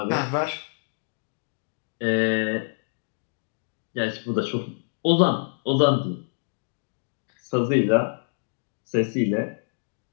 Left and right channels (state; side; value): silent; right; 59 dB below the other